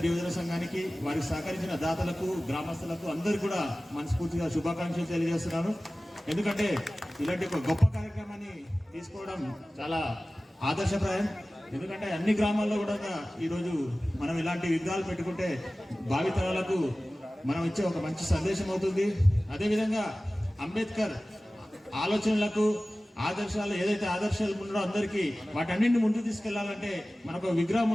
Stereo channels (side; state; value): both; normal; correlation 0.97